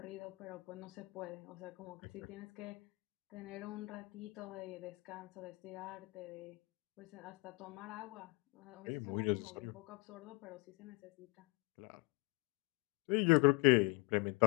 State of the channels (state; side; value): quieter; right; 26.4 dB